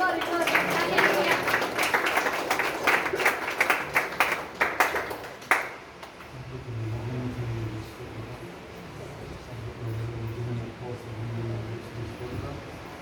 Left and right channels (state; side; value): identical; both; correlation 1.00